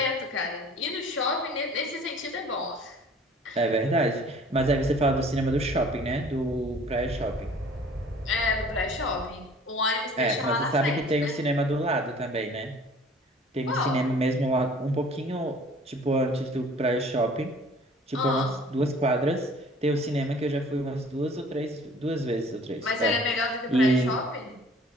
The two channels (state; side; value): normal; both; correlation 0.51